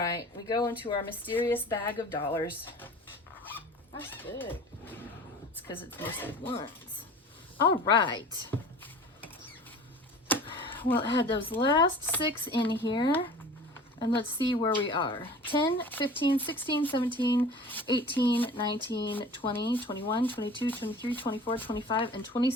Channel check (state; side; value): normal; both; correlation 0.41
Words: we go into our mysterious bag of dollars. That's thick. It's because it's mostly ones. All right. We'll add those last 6 in here. And let's see where we are. 10, 15, 16, 17, 18, 19, 20, 21, 22, 23, 24, 25, and